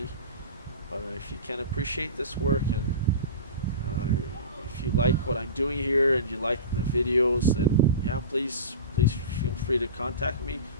But if you can appreciate this work, and if you like what I'm doing here and you like the videos, then yeah, please feel free to contact me,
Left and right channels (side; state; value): both; inverted; correlation -0.32